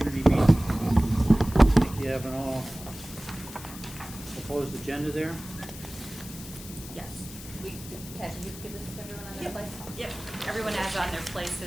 meeting. I think you have an all proposed agenda there. Yes. Cash, you give this to everyone on their place? Yep. Everyone has on their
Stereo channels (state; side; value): noise; left; hiss, 14 dB below the sound